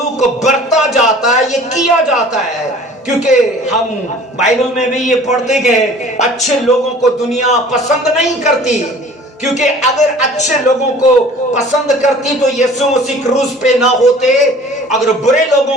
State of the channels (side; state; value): both; normal; correlation 0.47